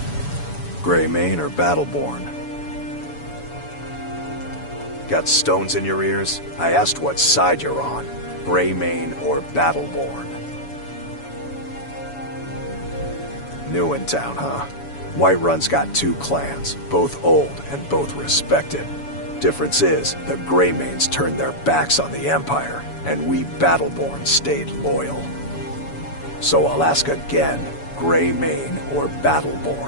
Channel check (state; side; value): late; right; 7.1 ms